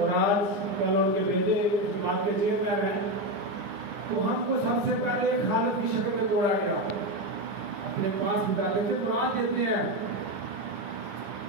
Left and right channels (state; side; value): late; left; 10 ms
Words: آج کل ان کے بیٹے اس جماعت کے چیئرمین ہیں. تو ہم کو سب سے پہلے ایک حالت کی شکل میں توڑا گیا، اپنے پاس بتاتے تھے قرآن دیتے ہیں.